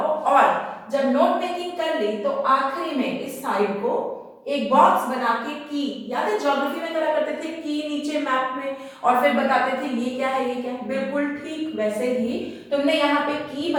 और जब नोट मेकिंग कर ली तो आखिरी में इस साइड को एक बॉक्स बना के की, याद है ज्योग्राफी में करा करते थे की नीचे मैप में और फिर बताते थे ये क्या है, ये क्या है, बिल्कुल ठीक वैसे ही तुमने यहाँ पे की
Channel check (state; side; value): identical; both; correlation 1.00